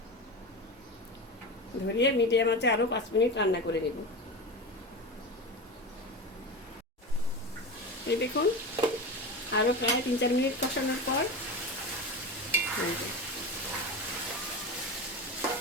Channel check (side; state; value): both; normal; correlation 0.24